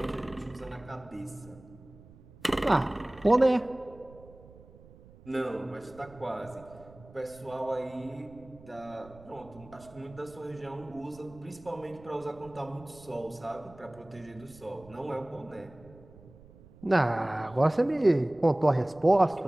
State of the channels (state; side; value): noise; right; rumble, 22 dB below the sound